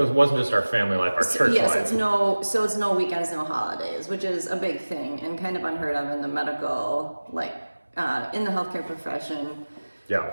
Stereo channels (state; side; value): inverted; both; correlation -1.00